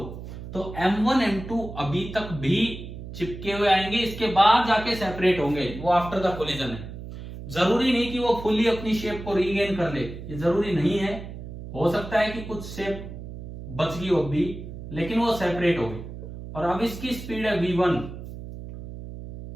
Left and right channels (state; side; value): noise; right; hum, 11 dB below the sound